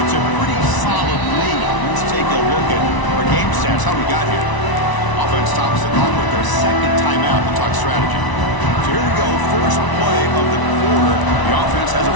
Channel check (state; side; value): late; right; 1.0 ms